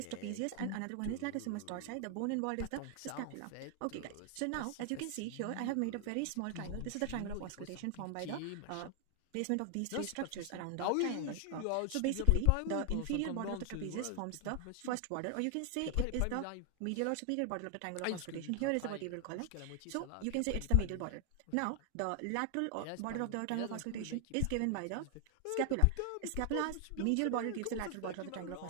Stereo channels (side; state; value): both; different; correlation 0.00